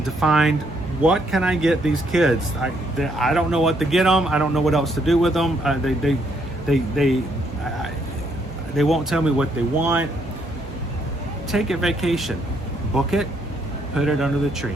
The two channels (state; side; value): normal; both; correlation 0.72